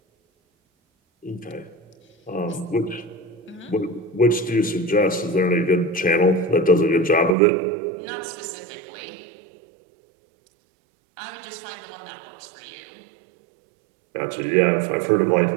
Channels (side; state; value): left; drops out; at 7.4 s